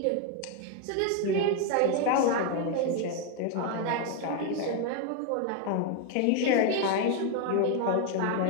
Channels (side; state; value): both; different; correlation 0.01